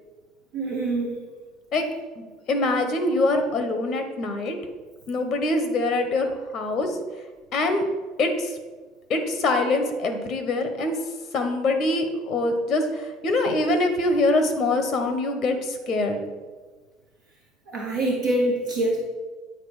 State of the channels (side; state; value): both; normal; correlation 0.55